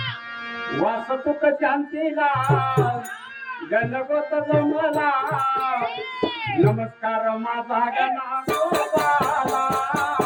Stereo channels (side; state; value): both; identical; correlation 1.00